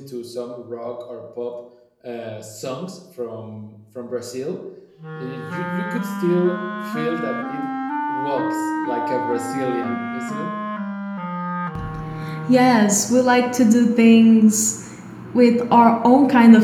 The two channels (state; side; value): identical; both; correlation 1.00